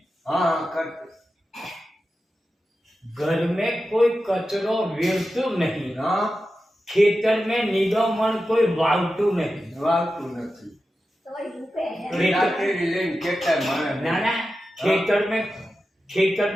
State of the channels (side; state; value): both; normal; correlation 0.92